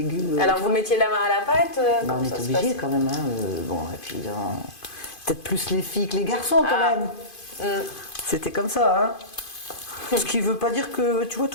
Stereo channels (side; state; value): right; late; 2.5 ms